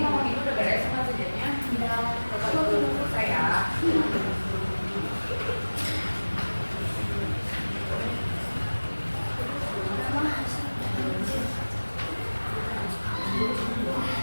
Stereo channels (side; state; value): both; inverted; correlation -1.00